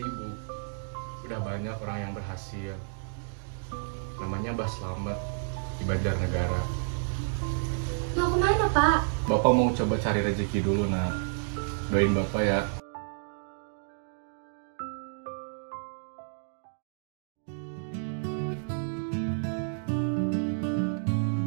Bu. Udah banyak orang yang berhasil. Namanya Mbah Slamet di Banjarnegara. Mau kemana Pak? Bapak mau coba cari rezeki dulu nak. Doain Bapak ya.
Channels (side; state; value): left; silent; digital silence